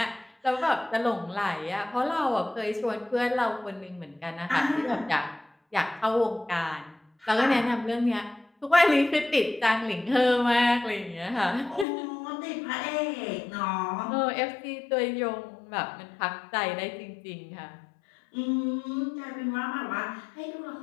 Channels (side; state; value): right; drops out; at 11.9 s